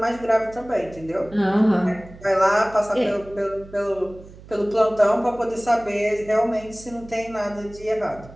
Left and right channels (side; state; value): right; noise; hum, 19 dB below the sound